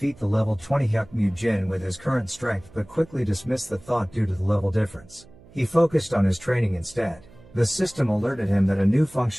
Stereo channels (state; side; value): noise; right; hum, 24 dB below the sound